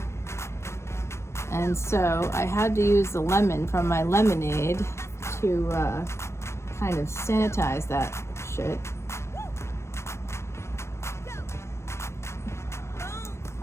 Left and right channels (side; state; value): right; late; 0.13 ms